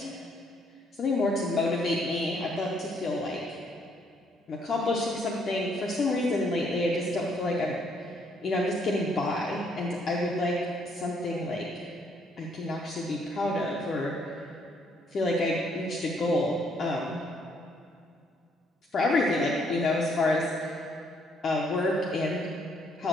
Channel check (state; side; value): normal; both; correlation 0.69